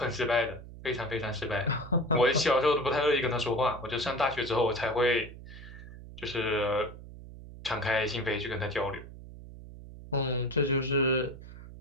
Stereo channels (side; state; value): right; noise; hum, 15 dB below the sound